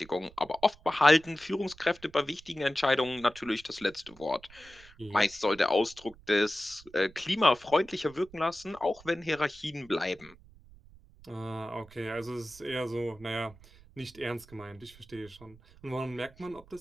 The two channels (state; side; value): noise; right; rumble, 23 dB below the sound